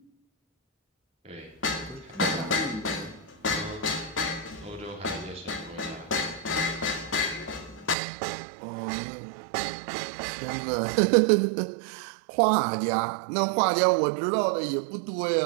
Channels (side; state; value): left; drops out; at 8.0 s